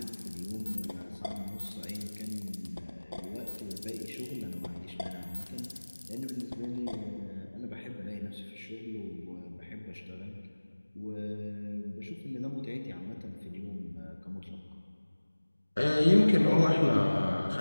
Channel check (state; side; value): inverted; both; correlation -1.00